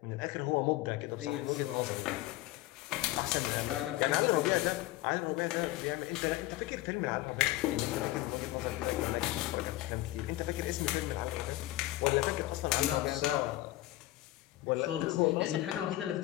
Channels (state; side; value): quieter; right; 16.9 dB